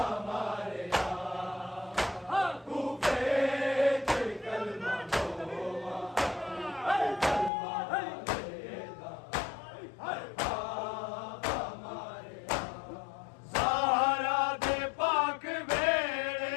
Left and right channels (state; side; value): drops out; right; at 7.5 s